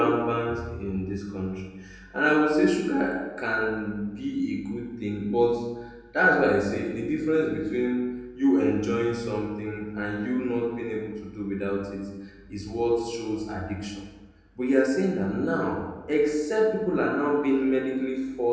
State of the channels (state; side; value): identical; both; correlation 1.00